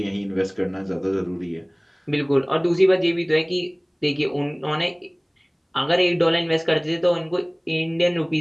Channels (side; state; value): both; identical; correlation 1.00